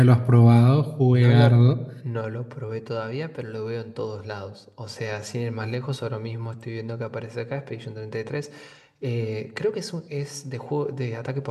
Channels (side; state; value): both; identical; correlation 1.00